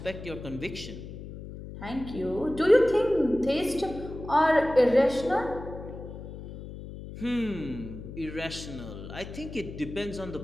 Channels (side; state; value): left; noise; hum, 11 dB below the sound